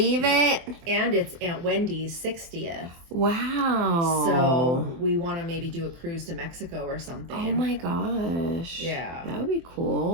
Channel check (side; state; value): left; late; 24 ms